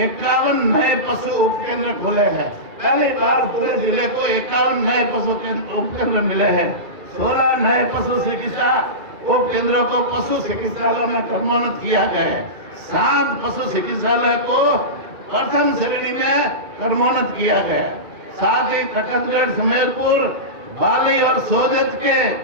नए पशु उपकेंद्र खोले हैं। पहली बार पूरे जिले को 51 नए पशु उपकेंद्र मिले हैं। 16 नए पशु चिकित्सा उपकेंद्रों को पशु चिकित्सालय में क्रमोन्नत किया गया है। 7 पशु चिकित्सालय को प्रथम श्रेणी में क्रमोन्नत किया गया है। साथ ही खटकगढ़ सुमेरपुर बाली और सोजत के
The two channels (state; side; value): late; left; 2.3 ms